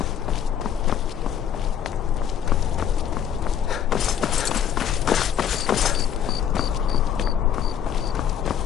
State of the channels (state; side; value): quieter; right; 9.1 dB